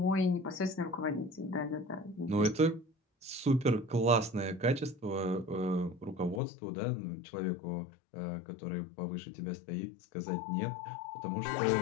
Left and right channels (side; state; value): right; drops out; at 6.4 s